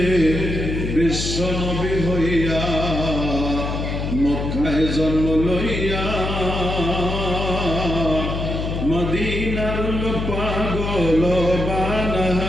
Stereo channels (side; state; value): left; noise; hum, 3 dB below the sound